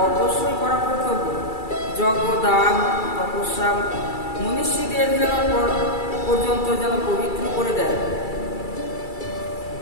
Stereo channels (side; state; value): right; late; 2.3 ms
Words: অবশ্যই করা কর্তব্য। যজ্ঞদান তপস্যা মনীষীদের যেন পর্যন্ত যেন পবিত্র করে দেয়।